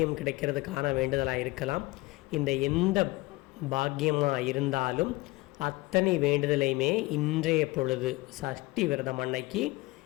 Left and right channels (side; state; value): right; quieter; 21.8 dB